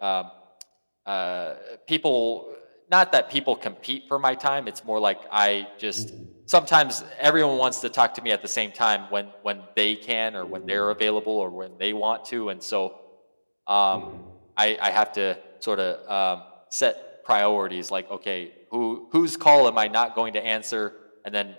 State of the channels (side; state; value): both; inverted; correlation -1.00